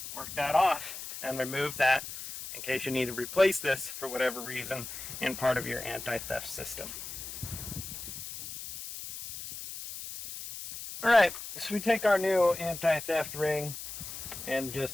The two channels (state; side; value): noise; left; hiss, 9 dB below the sound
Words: work that off and remove that in case you need to replace this for whatever reason in part of your anti-theft system. Alright, so we take our new anti-theft ring and